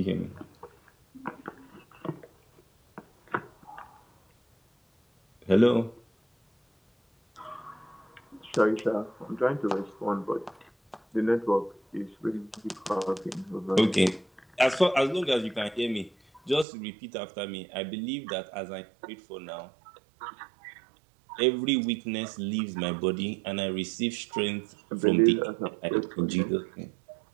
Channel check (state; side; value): drops out; left; at 16.7 s